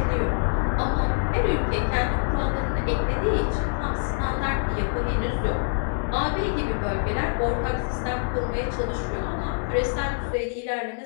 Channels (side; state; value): right; silent; 62 dB below the other